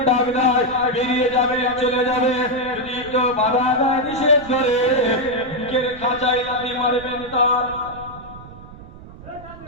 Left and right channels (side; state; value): right; noise; rumble, 17 dB below the sound